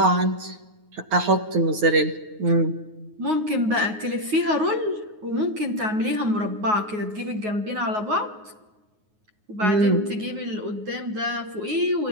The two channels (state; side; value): late; left; 9.5 ms